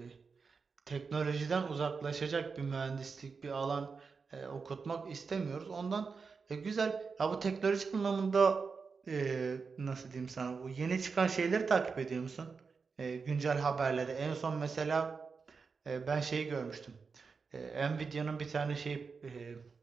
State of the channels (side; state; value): left; quieter; 5.0 dB